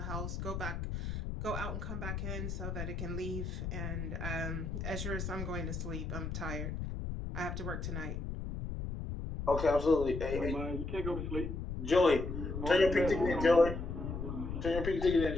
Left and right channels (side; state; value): left; noise; rumble, 4 dB below the sound